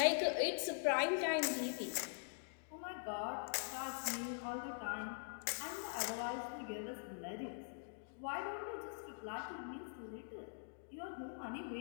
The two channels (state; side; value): silent; right; digital silence